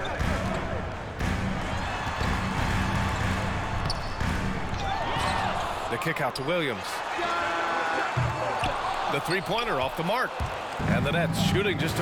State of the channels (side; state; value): both; identical; correlation 1.00